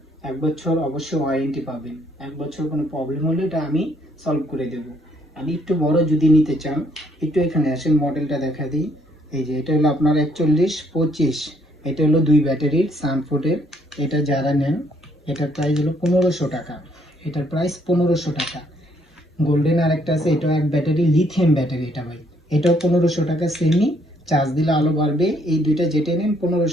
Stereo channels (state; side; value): normal; both; correlation 0.68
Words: 1 বছর অবশ্যই ওয়ারেন্টি পাবেন। 1 বছর কোনো প্রবলেম হলে এটা আমি সলভ করে দেব। আমি একটু বড় যদি নিতে চান, একটু এখানে আসেন, মডেলটা দেখা দিই। এই যে এটা হলো আপনার 4125। এটা হলো 2 ব্যাটারির সানফুডের। এটা যারা নেন, এটার প্রাইস হলো 1500 টাকা। এটার প্রাইস 1500 টাকা। গোল্ডেন আরেকটা আছে, এটা এক ব্যাটারি, লিথিয়াম ব্যাটারি। এটা ভাই, এটাও 1500 টাকা সেমি। চার্জ দিলে আলো বাড়বে। এই দুইটা যেটা নেন